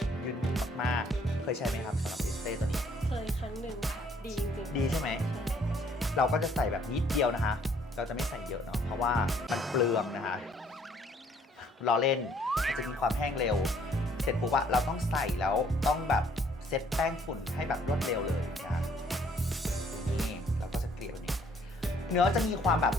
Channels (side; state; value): both; normal; correlation 0.63